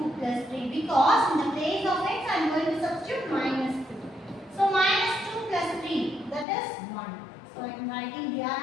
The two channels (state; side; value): drops out; right; at 6.5 s